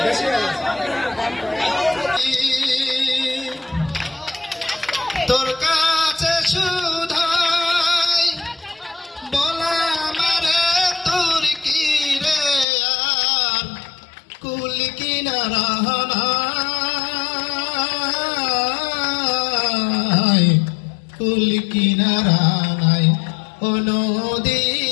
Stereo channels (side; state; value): right; drops out; at 12.7 s